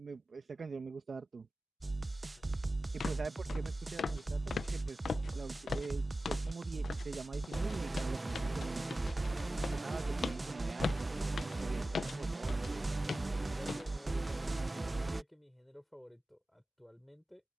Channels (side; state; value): both; normal; correlation 0.95